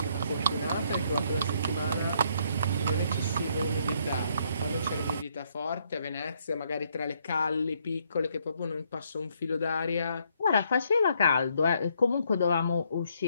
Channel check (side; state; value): both; inverted; correlation -0.71